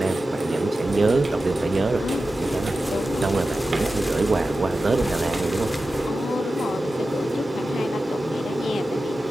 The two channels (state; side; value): normal; both; correlation 0.93